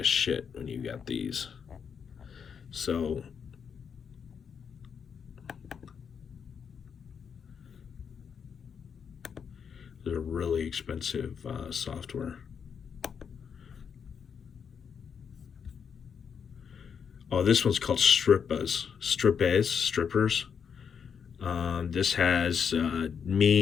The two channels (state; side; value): quieter; right; 6.9 dB